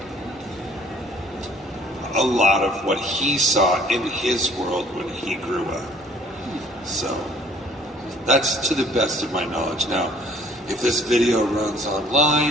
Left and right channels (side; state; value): both; normal; correlation 0.57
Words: a lot of what he saw in his world when he grew up. So that's to the best of my knowledge. Now, if this video runs